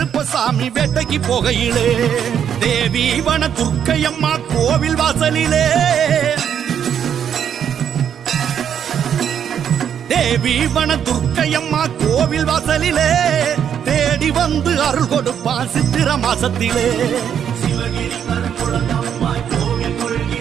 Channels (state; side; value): quieter; left; 8.7 dB